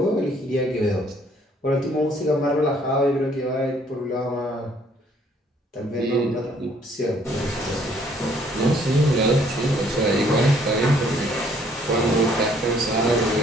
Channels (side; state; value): both; normal; correlation 0.63